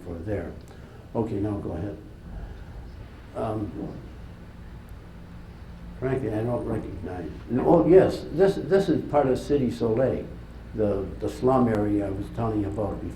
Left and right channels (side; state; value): both; identical; correlation 1.00